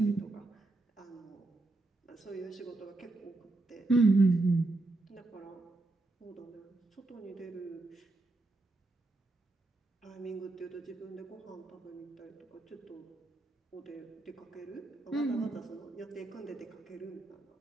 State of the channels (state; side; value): quieter; left; 3.0 dB